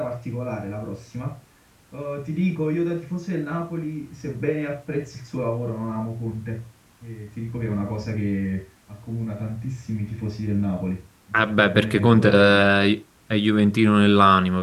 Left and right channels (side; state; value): both; identical; correlation 1.00